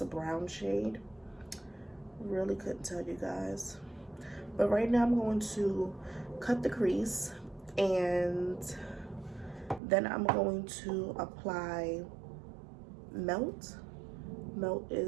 a brown shade. Really couldn't tell you guys. But right now I'm going to cut the crease, and then I'm going to apply Melt. Melt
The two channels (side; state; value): left; drops out; at 9.8 s